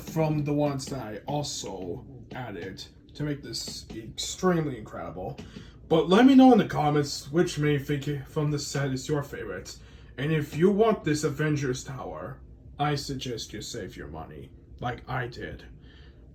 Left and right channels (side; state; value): both; identical; correlation 1.00